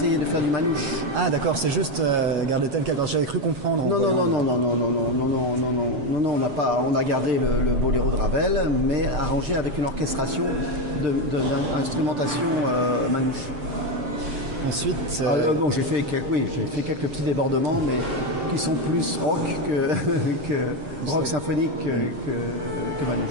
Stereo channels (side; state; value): left; late; 7.4 ms